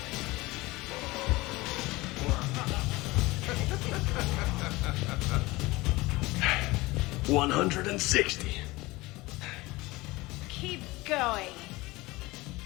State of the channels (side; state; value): right; quieter; 21.2 dB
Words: $160. Keep going.